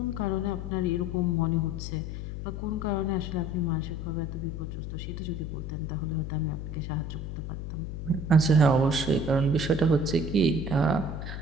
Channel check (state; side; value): noise; left; hum, 6 dB below the sound